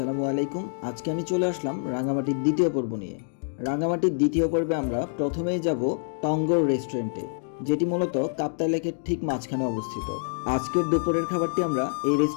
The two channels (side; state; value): right; silent; digital silence